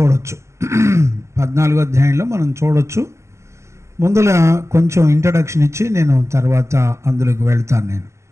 14వ అధ్యాయంలో మనం చూడొచ్చు. ముందుల కొంచెం ఇంట్రడక్షన్ ఇచ్చి నేను తర్వాత అందులోకి వెళ్తాను. నేను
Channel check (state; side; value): late; left; 0.14 ms